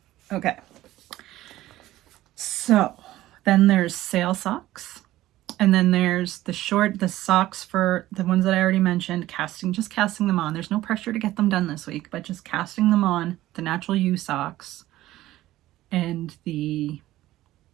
Okay. So then there's sail socks. And then there's the socks for the ones that I already mentioned, just casting them on. There's no pressure to get them done this week, but just casting them on, the Natural You socks and the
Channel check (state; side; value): quieter; left; 15.5 dB